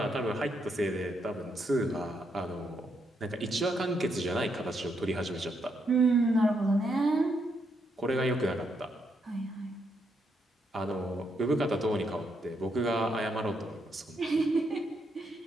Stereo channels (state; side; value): normal; both; correlation 0.78